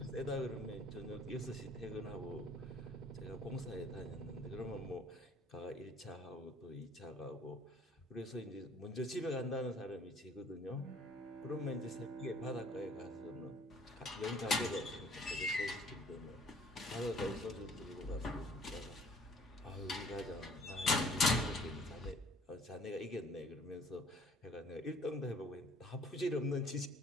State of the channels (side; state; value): both; normal; correlation 0.56